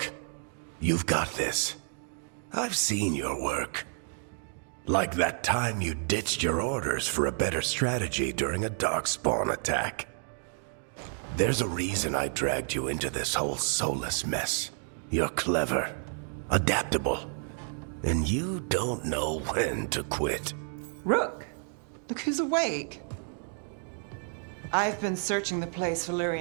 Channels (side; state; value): left; silent; 58 dB below the other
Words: you've got this. I've seen your work. Like that time you ditched your orders for a better strategy during a darkspawn attack. There's a reason I dragged you into this whole Solus mess. You're clever, adaptable, and you don't know when to quit. Rook, look who's awake. I've been searching the place for